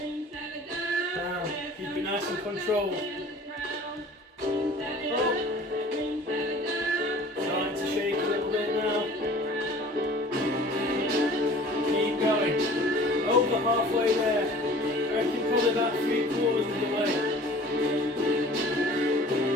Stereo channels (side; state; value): both; normal; correlation 0.46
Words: Down. Keep it nice and controlled. Starting to shake a little bit now. Keep going. Over halfway there. I reckon probably about 3/4 of the way.